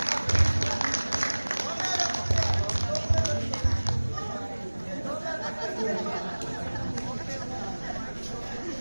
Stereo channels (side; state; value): both; inverted; correlation -1.00